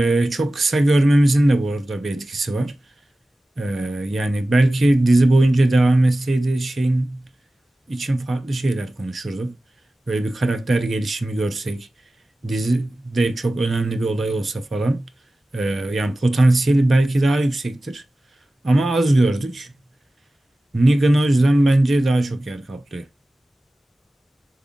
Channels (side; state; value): both; normal; correlation 0.96